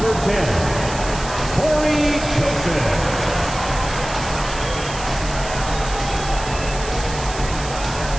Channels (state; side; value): noise; right; hiss, 11 dB below the sound